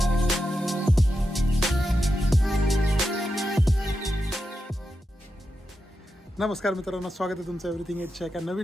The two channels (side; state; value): both; normal; correlation 0.88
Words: नमस्कार मित्रांनो, स्वागत आहे तुमचं एव्हरीथिंग एटच्या एका